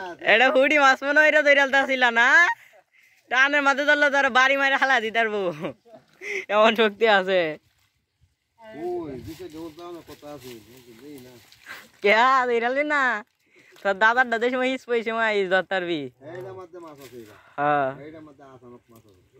এটা হুডি মাছ মনে হইরা দইরালতা ছিল না টানের মাঝে ধরলে তোর বাড়ি মাইরা হালাই দিতে পারবো এমন শক্তি আছে ওই দিকে জোর দাও না কত আছে দেই না কেয়া দইরালি না তোর দাদার দাদা সময় ইস পয়সা মাই ইস ধরতারবি এইটা মধ্যে মাছ আছে হ্যাঁ এইটা মধ্যে আসানো মাছ আছে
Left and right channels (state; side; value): identical; both; correlation 1.00